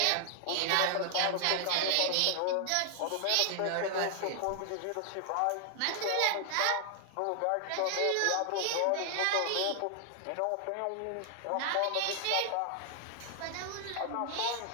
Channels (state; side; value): different; both; correlation 0.00